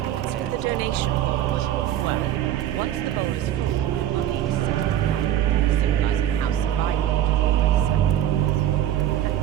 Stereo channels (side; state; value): left; quieter; 11.6 dB